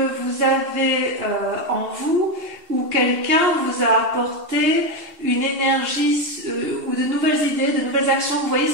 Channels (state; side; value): late; left; 2.7 ms